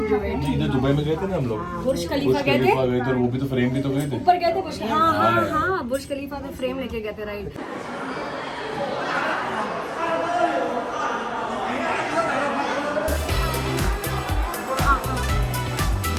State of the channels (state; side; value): identical; both; correlation 1.00